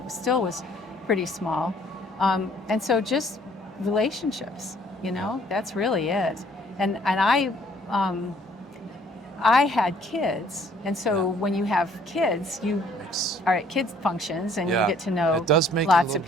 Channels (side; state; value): both; normal; correlation 0.61